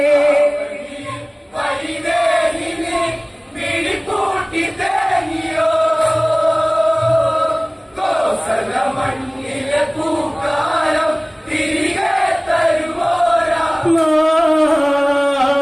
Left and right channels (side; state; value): both; identical; correlation 1.00